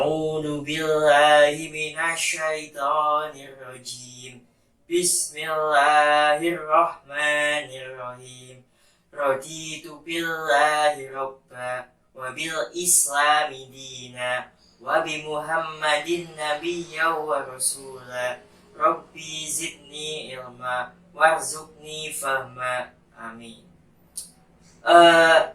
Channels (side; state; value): both; identical; correlation 1.00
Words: billahi minasyaitonir rajim. Bismillahirrahmanirrahim. Raditu billahi robba wa bil islami dina wa bi Muhammadin nabiyya wa rasula. Rabbi zidni ilma warzuqni fahma. Amin.